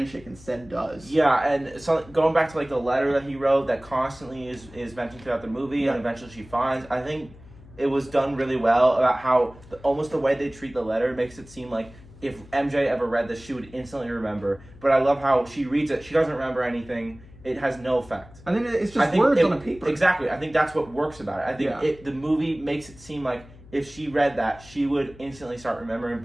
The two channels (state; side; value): noise; left; hum, 21 dB below the sound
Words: instead does. Yeah, and so going back to like the letter that he wrote that constantly is mentioned throughout the movie, and eventually she finds, I think it was done really well about how almost the way they treat the letter makes it seem like if MJ ever read this, she would instantly remember. But I love how she reads it, she doesn't remember anything. It has no effect. I think it's just words on a paper. Exactly. I think that's what works about it. I think the movie makes it seem like if she read that, she would instantly start remembering,